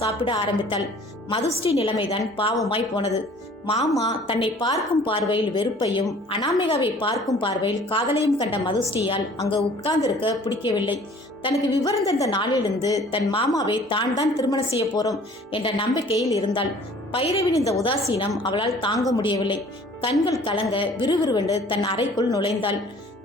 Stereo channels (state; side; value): normal; both; correlation 0.52